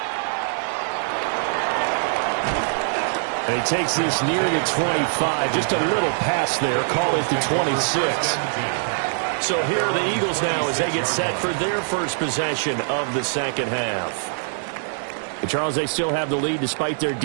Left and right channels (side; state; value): left; silent; 63 dB below the other